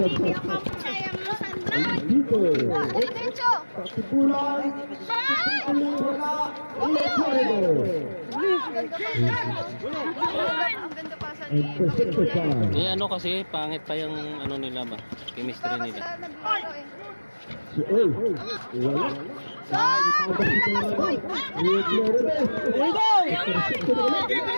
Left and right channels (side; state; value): both; inverted; correlation -1.00